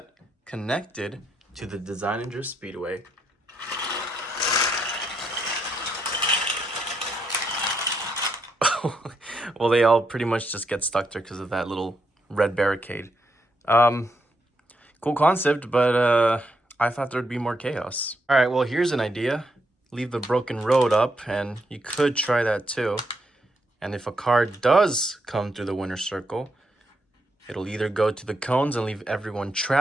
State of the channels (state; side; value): normal; both; correlation 0.79